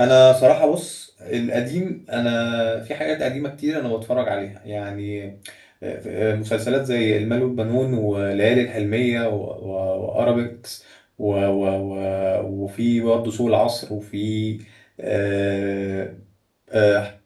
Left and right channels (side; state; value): both; identical; correlation 1.00